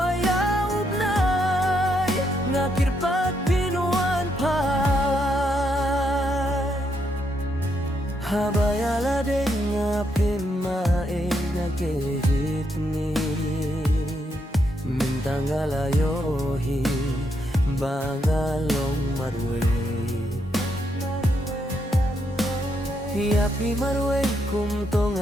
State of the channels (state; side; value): normal; both; correlation 0.78